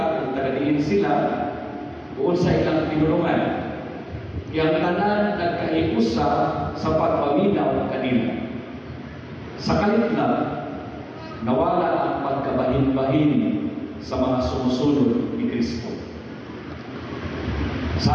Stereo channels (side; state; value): both; identical; correlation 1.00